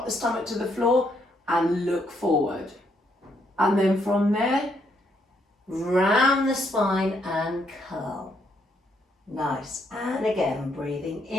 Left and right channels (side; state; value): both; normal; correlation 0.73